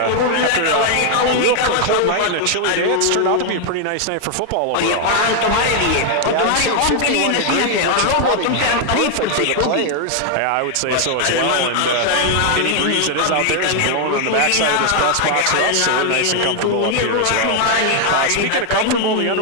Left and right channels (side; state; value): both; different; correlation 0.00